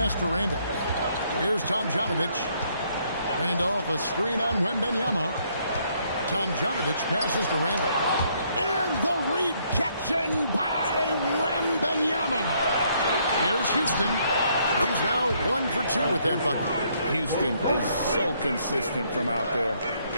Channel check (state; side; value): inverted; both; correlation -0.69